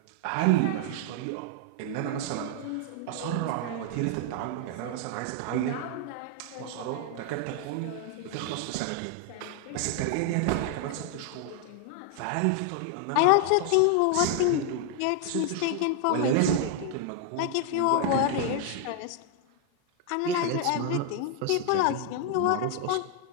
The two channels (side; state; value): both; different; correlation 0.00